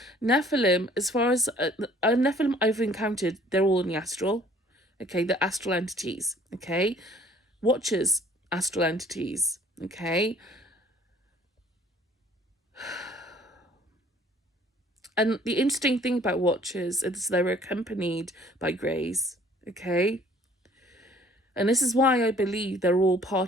Nephilim, as far as Nephilim I've encountered, they're all in the astral, okay? They're astral entities, okay? Watchers, astral entities, okay? And the interesting thing about watchers is they're accompanied by greys, okay? And this is why I believe they're all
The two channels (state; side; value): normal; both; correlation 0.56